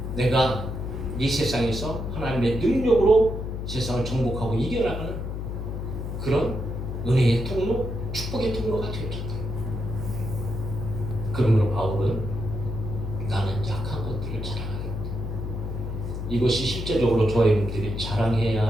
내가 이 세상에서 하나님의 능력으로 세상을 정복하고 이겨나가는 그런 은혜의 통로, 축복의 통로가 되었잖아요. 그러므로 바울은 나는 약한 것들을 자랑하겠다. 이것이 실제적으로 저와 여러분들이 자랑해야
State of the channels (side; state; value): left; noise; hum, 5 dB below the sound